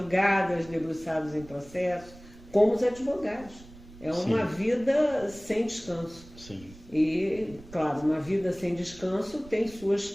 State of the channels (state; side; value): noise; right; rumble, 20 dB below the sound